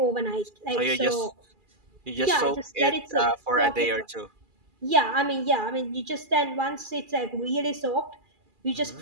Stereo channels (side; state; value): left; late; 2.4 ms